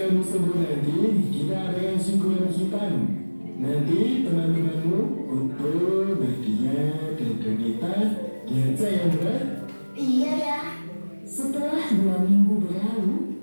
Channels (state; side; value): inverted; both; correlation -1.00